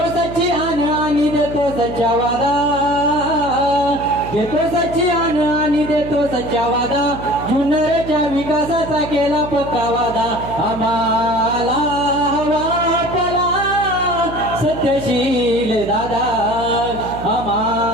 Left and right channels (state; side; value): noise; right; hum, 10 dB below the sound